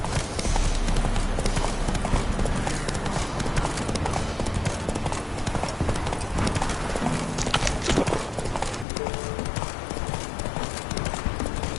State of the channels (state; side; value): drops out; right; at 8.8 s